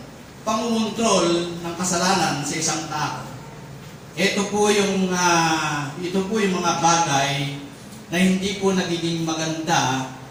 pangungontrol ng kasalanan sa isang tao, ito po yung mga bagay na hindi po nagiging maganda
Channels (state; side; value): identical; both; correlation 1.00